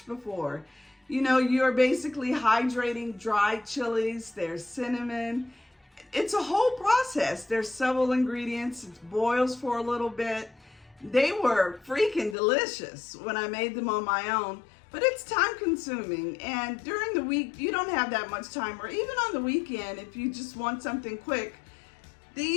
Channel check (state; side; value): drops out; right; at 12.4 s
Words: before. You know, you're basically hydrating dried chilies, there's cinnamon. It's a whole process. There's several ingredients. It boils for a little bit. They were freaking delicious when I made them on my own, but it's time consuming. And during the week, you don't have that much time, or even on the weekend, if you just want something quick,